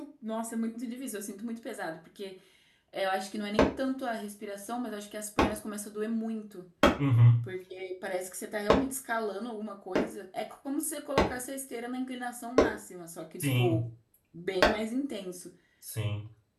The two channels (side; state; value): both; identical; correlation 1.00